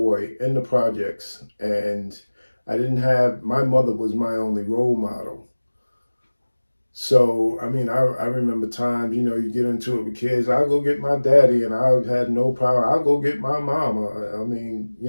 in the projects, and my mother was my only role model. So, I mean, I remember times, you get into it with kids. I'll go get my daddy, and I had no power. I'll go get my mama. I mean,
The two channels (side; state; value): both; inverted; correlation -1.00